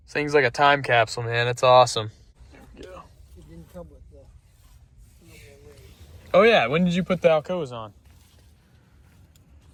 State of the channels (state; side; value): identical; both; correlation 1.00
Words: This thing's like a time capsule, man. It's awesome. There we go. It didn't come with the. Oh, yeah. When did you put the Alcoas on?